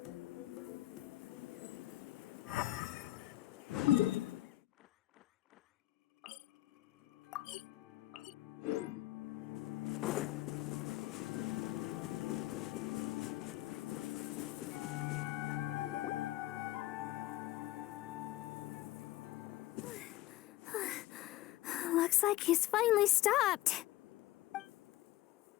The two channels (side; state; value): right; quieter; 16.2 dB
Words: Looks like he's finally stopped.